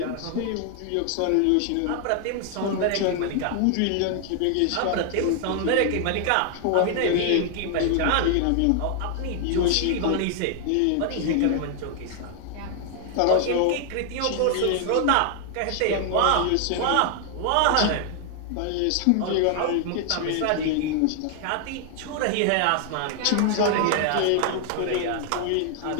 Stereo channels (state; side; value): different; both; correlation 0.00